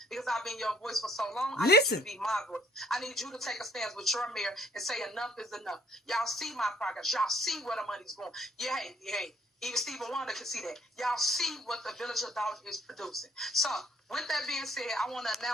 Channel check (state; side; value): normal; both; correlation 0.63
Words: because I've been your voice for so long. I need you to be my voice. I need you to take a stance with your mayor and say enough is enough. Y'all see my progress. Y'all see where the money's going. Yeah, hey. Even Stephen Wonder can see that. Y'all see what the Village of Doubt is producing. So, with that being said, I want to